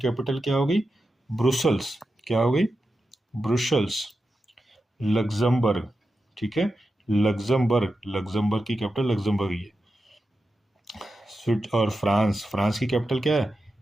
क्या हो गई, ब्रुसल्स। क्या हो गई, ब्रुसल्स। लग्जमबर्ग, ठीक है, लग्जमबर्ग। लग्जमबर्ग की कैपिटल लग्जमबर्ग ही है। और फ्रांस, फ्रांस की कैपिटल क्या है,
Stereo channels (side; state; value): both; normal; correlation 0.90